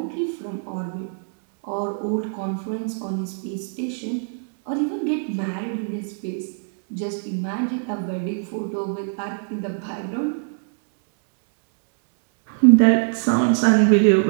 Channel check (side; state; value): left; silent; 63 dB below the other